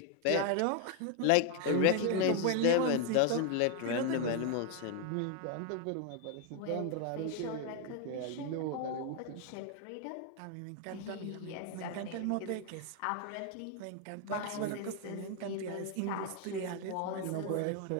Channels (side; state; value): both; different; correlation 0.00